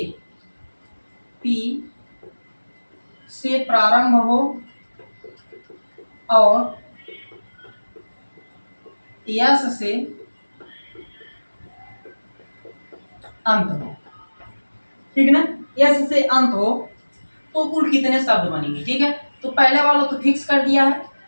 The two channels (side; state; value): both; inverted; correlation -1.00